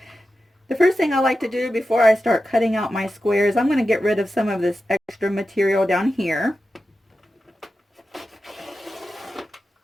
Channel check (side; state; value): both; normal; correlation 0.92